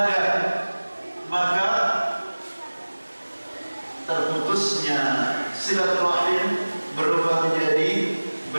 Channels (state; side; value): inverted; both; correlation -1.00